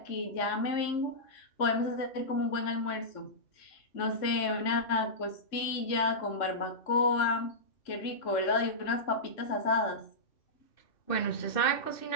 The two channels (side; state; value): right; late; 3.6 ms